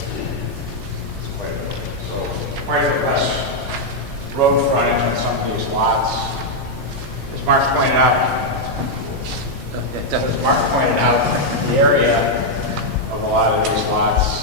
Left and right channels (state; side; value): normal; both; correlation -0.02